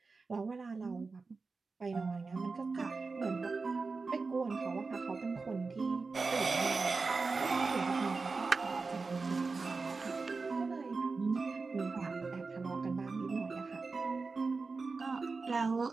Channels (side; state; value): left; quieter; 4.2 dB